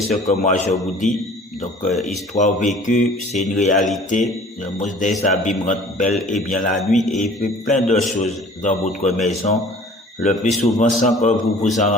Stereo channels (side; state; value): both; normal; correlation 0.49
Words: ce que moi je vous dis. Donc histoire vécue, c'est une réalité. Le monstre des abîmes rentre bel et bien la nuit et il fait plein de choses dans votre maison, le plus souvent sans que vous vous en